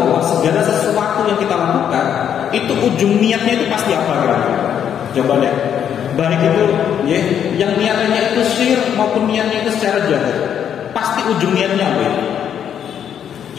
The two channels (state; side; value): quieter; right; 8.9 dB